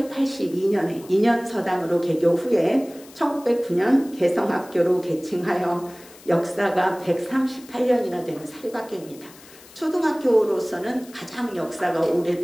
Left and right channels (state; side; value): noise; left; hiss, 22 dB below the sound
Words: 2년 서당으로 개교 후에 1909년 개성학교로 개칭하여 역사가 138년이나 되는 사립학교입니다. 초등학교로서는 가장 역사가